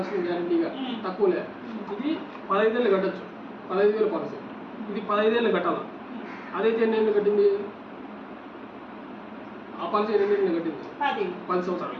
గ్యారంటీగా, తక్కువలే. ఇది 15 ఏళ్ళు కట్టచ్చు, 15,000 పాలసీ. ఇది 15 ఏళ్ళు కట్టాలి. అదైతే ఎన్ని ఏళ్ళు కట్టింది? ఆ పాలసీ ఎన్ని ఏళ్ళు కట్టింది? 10 సంవత్సరాలు.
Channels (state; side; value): identical; both; correlation 1.00